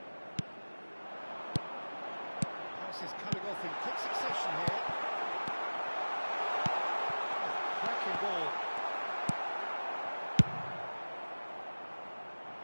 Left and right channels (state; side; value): inverted; both; correlation -1.00